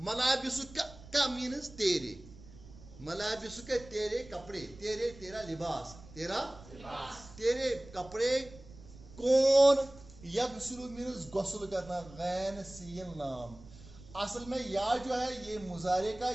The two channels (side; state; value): right; noise; rumble, 19 dB below the sound